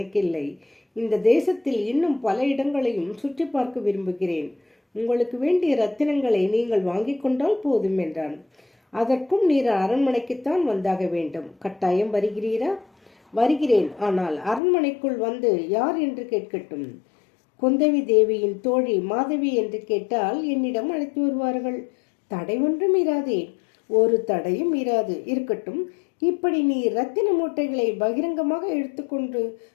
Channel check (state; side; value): drops out; right; at 14.6 s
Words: இந்த தேசத்தில் இன்னும் பல இடங்களையும் சுற்றி பார்க்க விரும்புகிறேன். உங்களுக்கு வேண்டிய ரத்தினங்களை நீங்கள் வாங்கிக் கொண்டால் போதும் என்றான். அதற்கும் நீர் அரண்மனைக்குத்தான் வந்தாக வேண்டும். கட்டாயம் வருகிறீரா? வருகிறேன். ஆனால் அரண்மனைக்குள் வந்து யார் என்று கேட்கட்டும். குந்தவி தேவியின் தோழி மாதவி என்று கேட்டால் என்னிடம் அழைத்து வருவார்கள். தடை ஒன்றும் இராதே. ஒரு தடையும் இராது. இருக்கட்டும், இப்படி நீ ரத்தின மூட்டைகளை பகிரங்கமாக எடுத்துக்கொண்டு